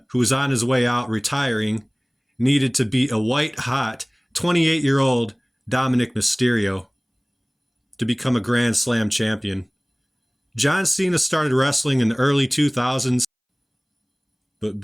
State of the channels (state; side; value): identical; both; correlation 1.00